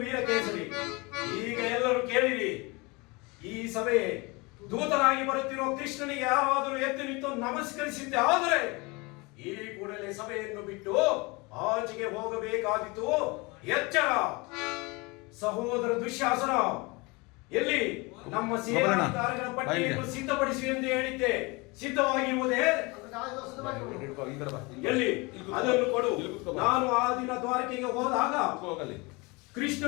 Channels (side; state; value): right; quieter; 26.3 dB